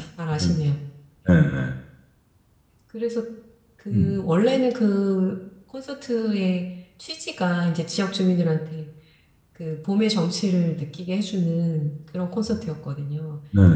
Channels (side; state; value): both; identical; correlation 1.00